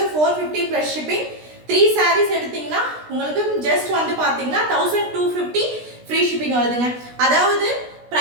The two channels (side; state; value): left; late; 16 ms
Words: 450 ப்ளஸ் ஷிப்பிங். 3 சாரீஸ் எடுத்தீங்கன்னா உங்களுக்கு ஜஸ்ட் பார்த்தீங்கன்னா 1250 ஃப்ரீ ஷிப்பிங் வருதுங்க. அதாவது